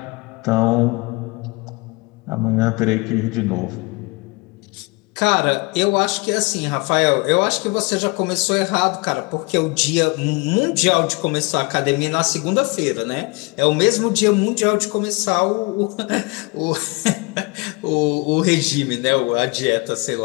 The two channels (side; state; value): right; quieter; 27.4 dB